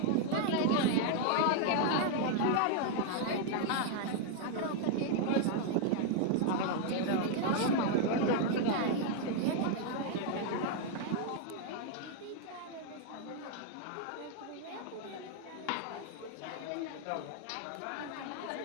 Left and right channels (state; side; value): different; both; correlation 0.00